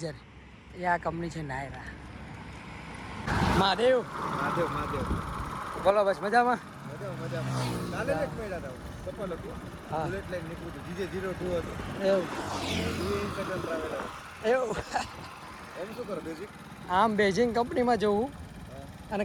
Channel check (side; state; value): both; identical; correlation 1.00